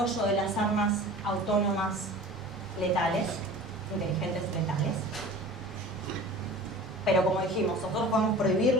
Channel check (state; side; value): normal; both; correlation 0.40